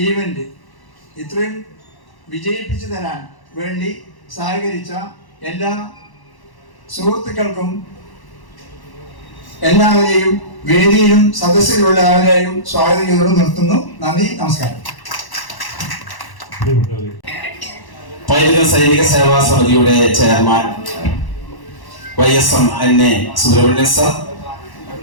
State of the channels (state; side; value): late; right; 1.1 ms